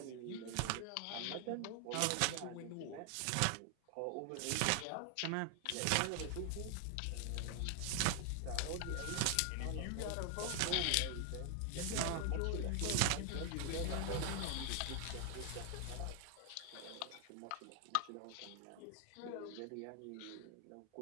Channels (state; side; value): different; both; correlation 0.00